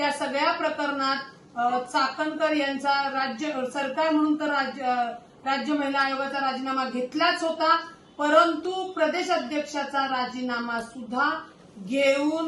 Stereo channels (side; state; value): both; identical; correlation 1.00